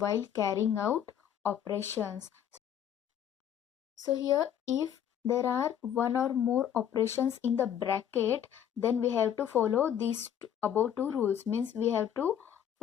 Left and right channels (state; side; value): quieter; right; 9.6 dB